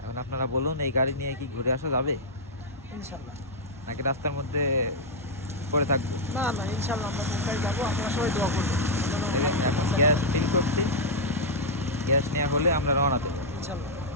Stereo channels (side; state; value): both; normal; correlation -0.04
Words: এখন আপনারা বলুন, এই গাড়ি নিয়ে কি ঘুরে আসা যাবে ইনশাল্লাহ। নাকি রাস্তার মধ্যে পড়ে থাকবো? না না, ইনশাল্লাহ আমরা কোথায় যাবো, আপনারা সবাই দোয়া করবেন যেন দেখেন, আমাদের এখন পৌঁছাতে গ্যাস পারি। ফিল করছি। গ্যাস নেওয়া হলে আমরা রওনা দেবো। ইনশাল্লাহ।